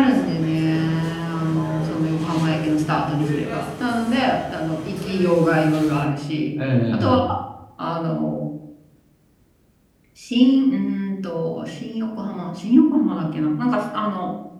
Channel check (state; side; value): identical; both; correlation 1.00